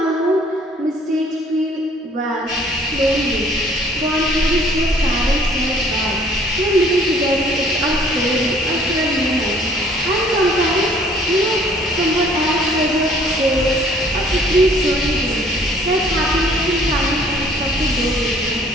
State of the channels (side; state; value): both; normal; correlation 0.57